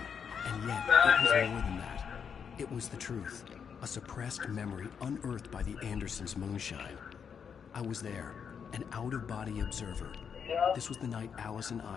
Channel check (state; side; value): quieter; right; 7.0 dB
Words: and yet it was more than that. It was the truth, a suppressed memory unearthed by the Andersons' moonshine. I was there, an out-of-body observer. This was the night Alice and